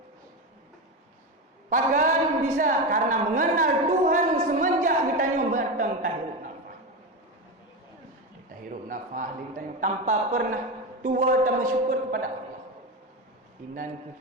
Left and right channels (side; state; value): both; normal; correlation 0.17